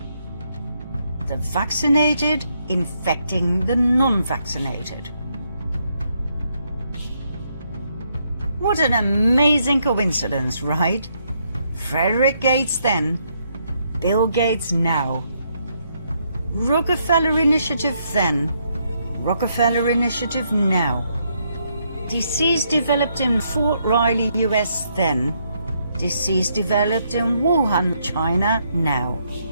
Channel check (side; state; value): both; inverted; correlation -0.75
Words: The vaccinated infecting the non-vaccinated. What an amazing coincidence, right? Frederick Gates then, Bill Gates now. Rockefeller Initiative then, Rockefeller Initiative now. Disease developed in Fort Riley, US then. Disease developed in Wuhan, China now.